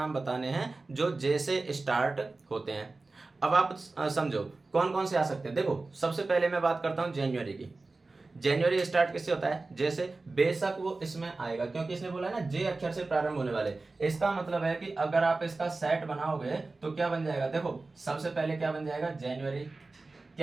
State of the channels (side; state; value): left; quieter; 3.5 dB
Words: बताने हैं जो जे से स्टार्ट होते हैं। अब आप समझो कौन कौन से आ सकते हैं। देखो, सबसे पहले मैं बात करता हूं जनवरी की। जनवरी स्टार्ट किससे होता है, जे से। बेशक वो इसमें आएगा क्योंकि इसने बोला है ना जे अक्षर से प्रारंभ होने वाले। इसका मतलब है कि अगर आप इसका सेट बनाओगे तो क्या बन जाएगा। देखो, सबसे पहले क्या बन जाएगा, जनवरी।